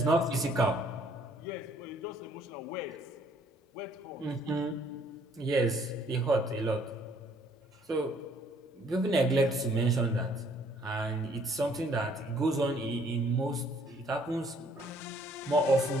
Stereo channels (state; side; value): normal; both; correlation 0.62